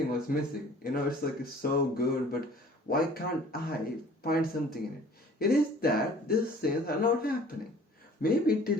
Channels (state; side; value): normal; both; correlation 0.50